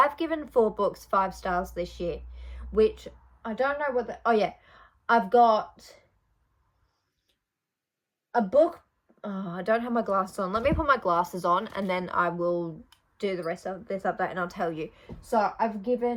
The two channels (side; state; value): both; identical; correlation 1.00